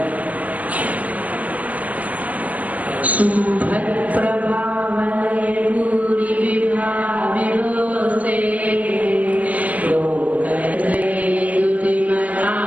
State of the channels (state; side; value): late; left; 0.071 ms